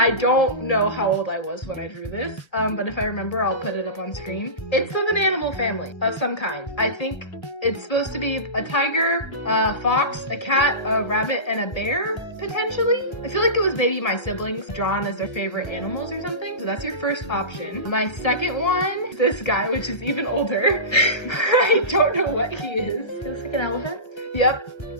don't know how old I was when I drew this, but if I remember, I'll put it up on screen. It's of an animal family of some kind. I think it's supposed to be a tiger, a fox, a cat, a rabbit, and a bear, potentially. I feel like it was maybe my siblings drawn as their favorite animals or something. So that's your first option. My second one is this guy, which is even older. I don't know what he is. He looks like an elephant Yep.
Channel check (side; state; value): right; late; 1.3 ms